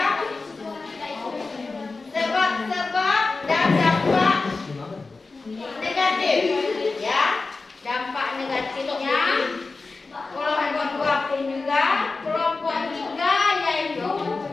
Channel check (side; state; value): right; quieter; 3.8 dB